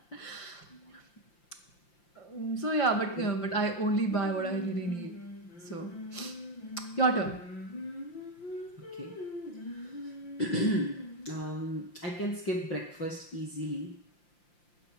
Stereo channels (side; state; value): right; late; 5.8 ms